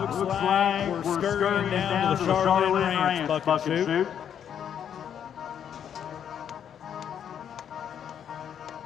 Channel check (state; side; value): quieter; right; 8.8 dB